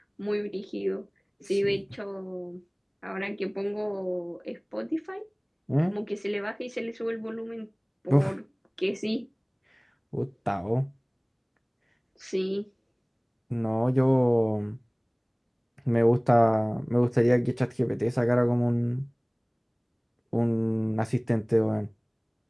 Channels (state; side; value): identical; both; correlation 1.00